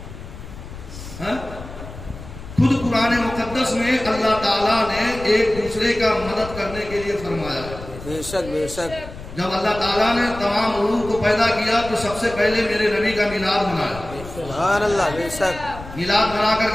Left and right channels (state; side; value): noise; left; rumble, 13 dB below the sound